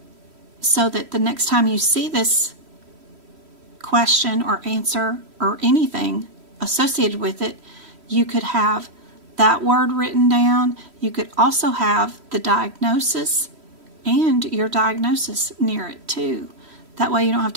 so that the next time you see this question or answer or anything associated with it, you could have that word written down. You could also have the diagnosis and your diagnosis near it too. That way you don't have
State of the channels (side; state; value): left; late; 3.1 ms